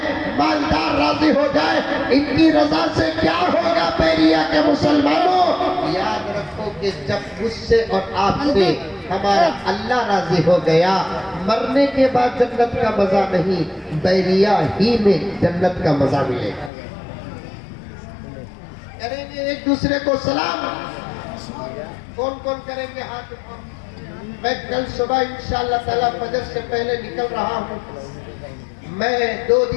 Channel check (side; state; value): right; drops out; at 16.7 s